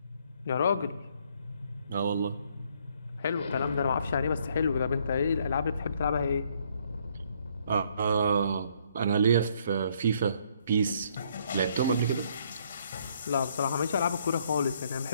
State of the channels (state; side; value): inverted; both; correlation -0.67